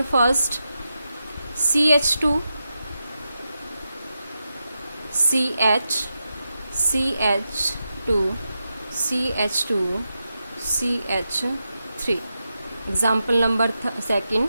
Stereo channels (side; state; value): both; inverted; correlation -0.89